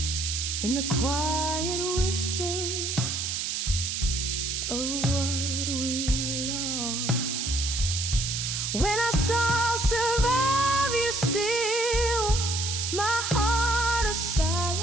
in the quiet whispers of what we lost. When I saw I'll survive you still, my heart a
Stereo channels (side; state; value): right; noise; hiss, 2 dB below the sound